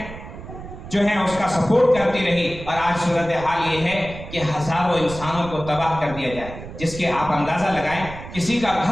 جو ہیں اس کا سپورٹ کرتی رہی۔ اور آج صورتحال یہ ہے کہ ہزاروں انسانوں کو تباہ کر دیا جائے، جس کے آپ اندازہ لگائیں، کسی کا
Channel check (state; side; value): noise; right; rumble, 12 dB below the sound